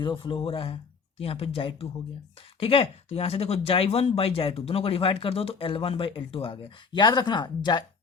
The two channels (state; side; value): quieter; right; 5.3 dB